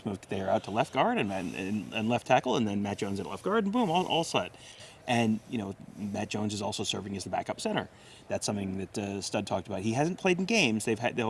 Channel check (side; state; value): both; identical; correlation 1.00